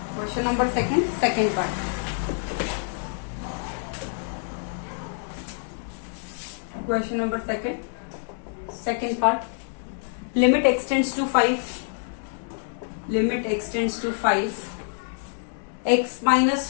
Question number second part. Question number second part. Limit x tends to 5. Limit x tends to 5. X minus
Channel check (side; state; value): right; silent; digital silence